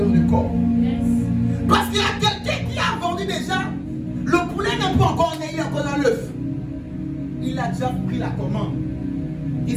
de corps. Parce qu'il y a quelqu'un qui a vendu déjà, le poulet n'est pas encore né, il est encore dans l'œuf. Il a déjà pris la commande.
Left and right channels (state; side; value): identical; both; correlation 1.00